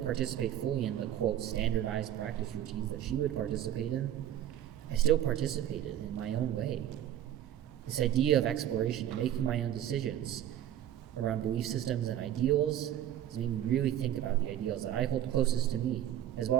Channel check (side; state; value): left; quieter; 11.4 dB